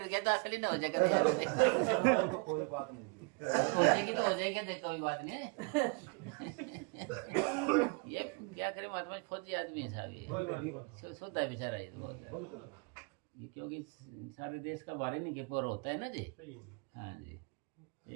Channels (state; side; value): quieter; left; 32.2 dB